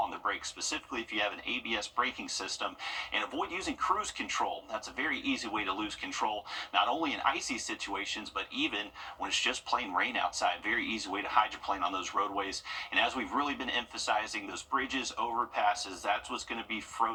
the brakes, specifically if you have an ABS braking system, and avoid using cruise control. That's a very easy way to lose control, not only in icy situations, but even when it's just plain rain outside. Very easy way to hydroplane on those roadways. And as we've really been emphasizing, those bridges, overpasses, that's what's going to be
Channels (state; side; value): identical; both; correlation 1.00